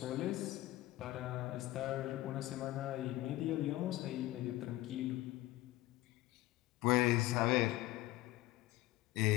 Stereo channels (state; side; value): quieter; right; 17.1 dB